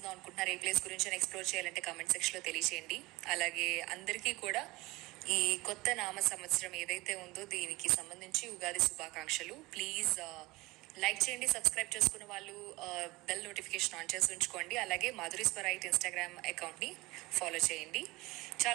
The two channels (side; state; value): left; quieter; 21.4 dB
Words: అనుకుంటున్నారు, ఏ ప్లేస్ గురించి ఎక్స్ప్లోర్ చేయాలంటే కామెంట్ సెక్షన్లో తెలియచేయండి. అలాగే అందరికీ కూడా ఈ కొత్త నామ సంవత్సరం ఏదైతే ఉందో దీనికి సంబంధించి ఉగాది శుభాకాంక్షలు. ప్లీజ్ లైక్ చేయండి, సబ్స్క్రైబ్ చేసుకున్న వాళ్ళు బెల్ నోటిఫికేషన్ ఆన్ చేసి ఉంచుకోండి. అలాగే మాధురి స్వరైట్ ఇన్స్టాగ్రామ్ అకౌంట్ని ఫాలో చేయండి.